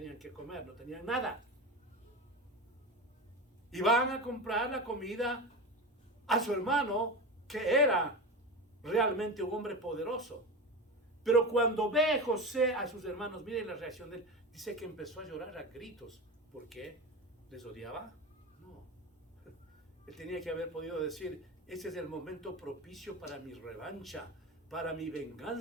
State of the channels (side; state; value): both; normal; correlation 0.24